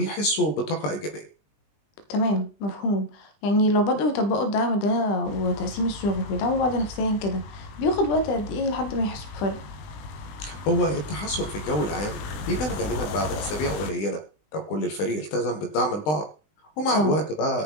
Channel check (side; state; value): right; late; 20 ms